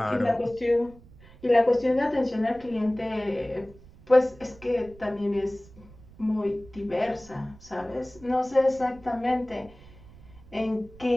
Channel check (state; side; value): noise; right; rumble, 22 dB below the sound